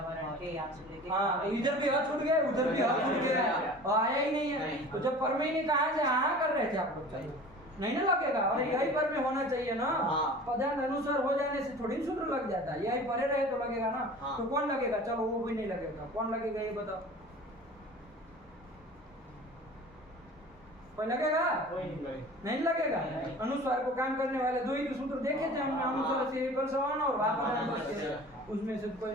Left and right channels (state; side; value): normal; both; correlation 0.41